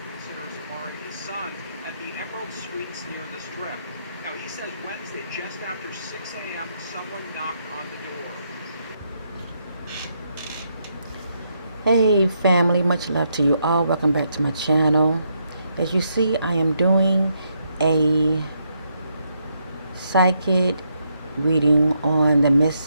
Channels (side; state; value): both; inverted; correlation -0.77